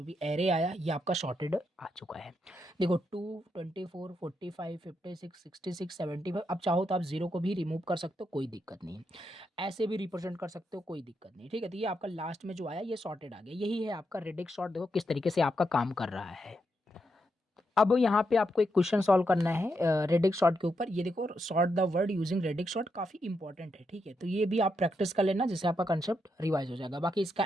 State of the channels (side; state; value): both; normal; correlation 0.82